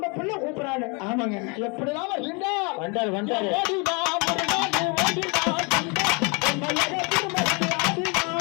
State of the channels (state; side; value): quieter; right; 31.4 dB